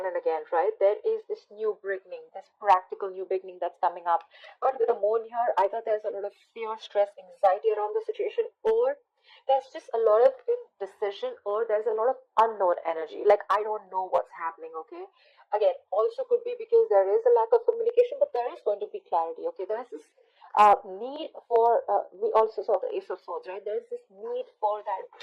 and again, right? There is this new beginning, this practical new beginning that's coming up. But with the moon here, either there's a lot of fear, stress, anxiety around the situation, or there's just a lot of indecision, or there's a lot of unknown energy. Like, I don't know what's happening, okay? Again, also could be because there is a lack of communication, but there is going to be clarity, okay? There's this need for, we also saw the Ace of Swords, right? There's this need for that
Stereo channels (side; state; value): both; identical; correlation 1.00